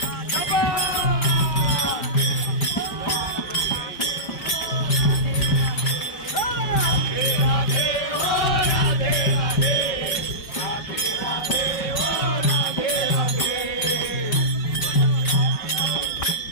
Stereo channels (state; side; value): late; right; 5.0 ms